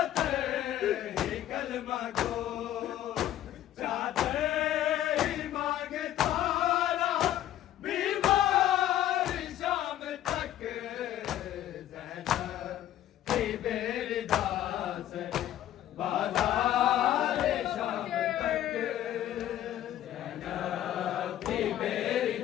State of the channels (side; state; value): right; quieter; 12.5 dB